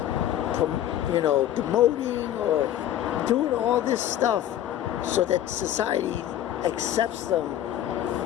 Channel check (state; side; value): quieter; right; 11.8 dB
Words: demoting or doing all this stuff so that society accepts them,